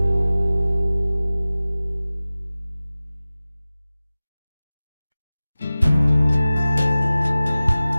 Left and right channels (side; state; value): both; inverted; correlation -0.97